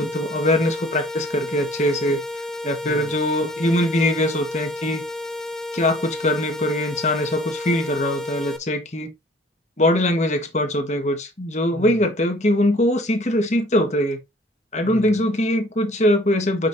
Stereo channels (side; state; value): both; normal; correlation 0.53